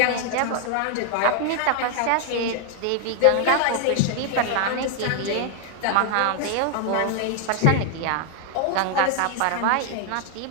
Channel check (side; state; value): both; different; correlation 0.00